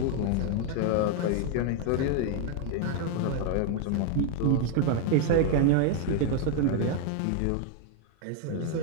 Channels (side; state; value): both; different; correlation 0.00